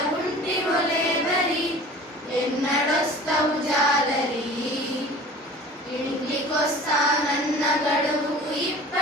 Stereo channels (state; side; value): normal; both; correlation 0.43